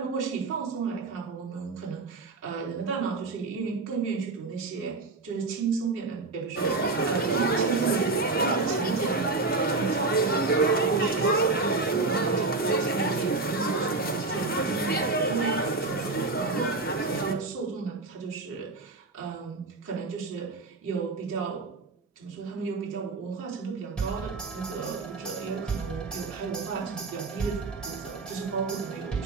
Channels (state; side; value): quieter; left; 3.6 dB